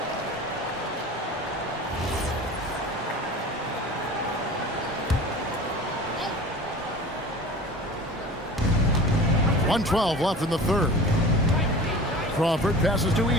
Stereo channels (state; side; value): normal; both; correlation 0.38